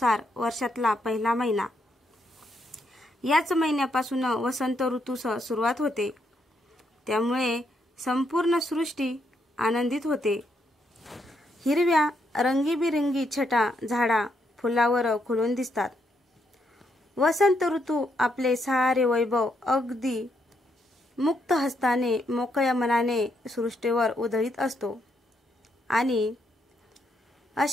वर्षातला पहिला महिना. याच महिन्यापासून वसंत ऋतूस सुरुवात होते. त्यामुळे संपूर्ण सृष्टी आनंदित होते. हिरव्या रंगीबिरंगी छटा झाडा फुलावर खुलून दिसतात. वसंत ऋतू आपले सारे वैभव अगदी मुक्त हस्ताने मोकळ्या मनाने सृष्टीवर उधळीत असतो आणि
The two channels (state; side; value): normal; both; correlation 0.77